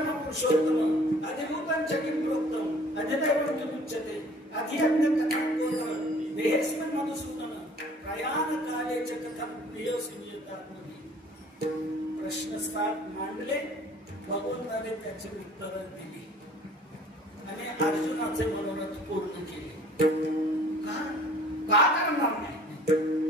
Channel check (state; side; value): normal; both; correlation 0.51